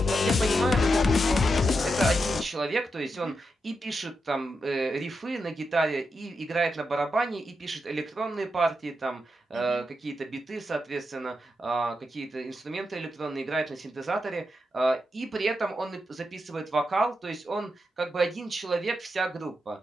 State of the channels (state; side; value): normal; both; correlation 0.86